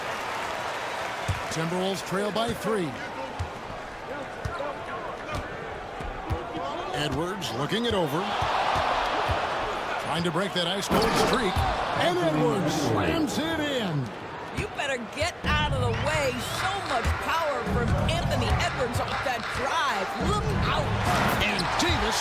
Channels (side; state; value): both; identical; correlation 1.00